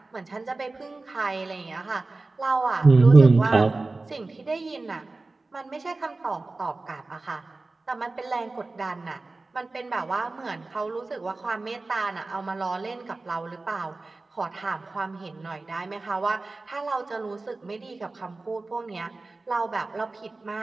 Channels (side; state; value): left; quieter; 3.4 dB